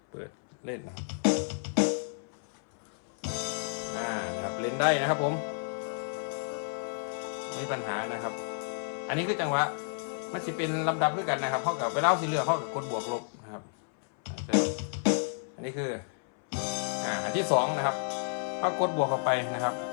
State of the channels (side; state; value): right; silent; 57 dB below the other